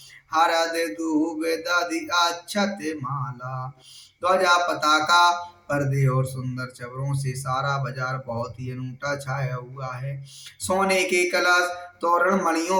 हरद दूब दधि अक्षत माला। ध्वजा पताका पर्दे और सुंदर चवरों से सारा बाजार बहुत ही अनूठा छाया हुआ है। सोने के कलश, तोरण,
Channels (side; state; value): both; identical; correlation 1.00